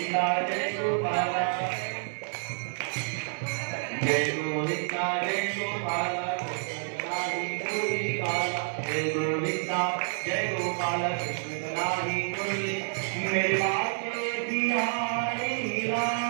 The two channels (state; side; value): silent; left; 59 dB below the other